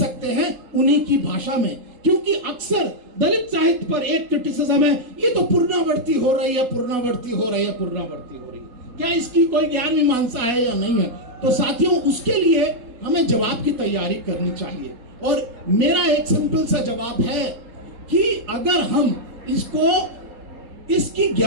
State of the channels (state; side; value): late; left; 3.8 ms